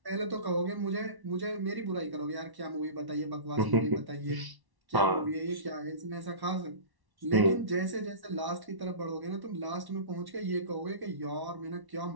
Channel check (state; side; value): late; left; 1.1 ms